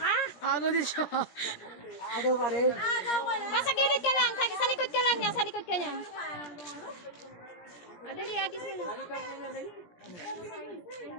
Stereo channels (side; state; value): right; late; 17 ms